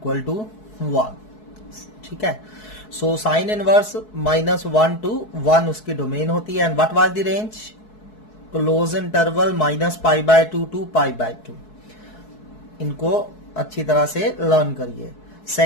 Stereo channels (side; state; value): right; late; 4.7 ms